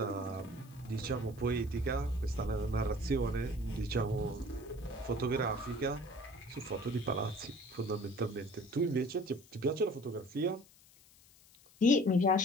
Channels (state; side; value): noise; left; hiss, 26 dB below the sound